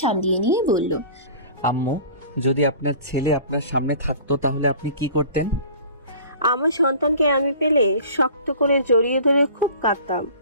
সামলিয়ে নিয়ে বলল, আম্মু, যদি আপনার ছেলে আপনার সামনে থাকতো তাহলে আপনি কি করতেন? আমার সন্তানকে আমি পেলে শক্ত করে জড়িয়ে ধরে খুব কাঁদতাম।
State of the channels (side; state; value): both; inverted; correlation -0.43